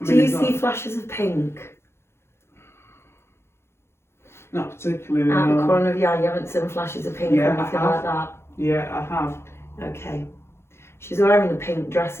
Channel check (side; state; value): right; late; 0.12 ms